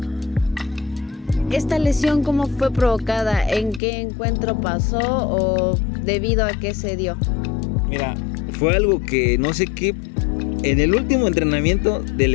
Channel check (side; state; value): right; drops out; at 3.8 s